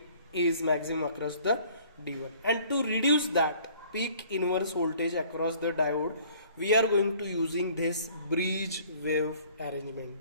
is maximum across the D1. And to reduce that peak inverse voltage across the diode, we are going to using this bridge wave arrangement,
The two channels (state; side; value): inverted; both; correlation -0.55